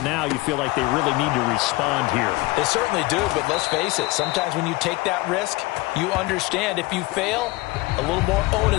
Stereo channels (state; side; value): quieter; right; 21.1 dB